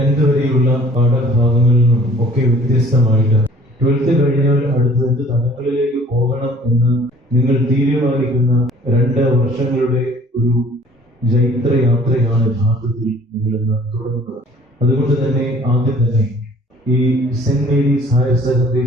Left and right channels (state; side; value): normal; both; correlation 0.53